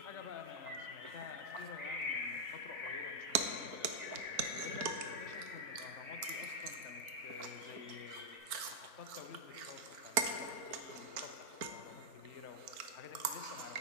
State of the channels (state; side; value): late; left; 4.4 ms